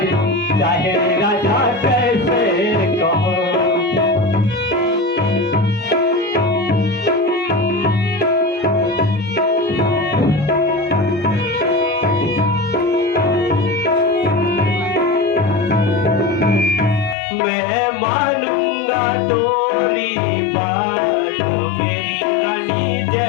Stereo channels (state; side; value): drops out; right; at 17.2 s